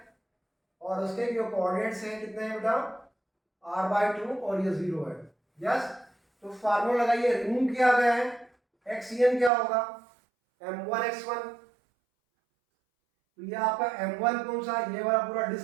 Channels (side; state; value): left; drops out; at 9.5 s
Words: और उसके जो कोऑर्डिनेट्स हैं कितने हैं बेटा, r/2 और ये 0 है। यस, तो फार्मूला लगाइए, रिमूव किया गया है, xn क्या होगा, m1x1। तो ये आपका m1 कौन सा, ये वाला पूरा